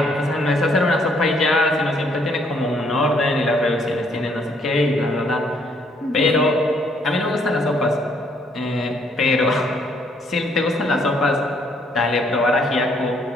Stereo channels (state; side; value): normal; both; correlation 0.67